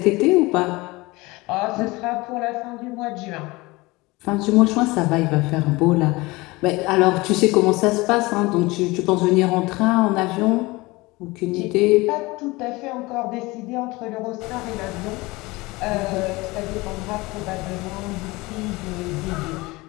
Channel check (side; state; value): right; quieter; 22.4 dB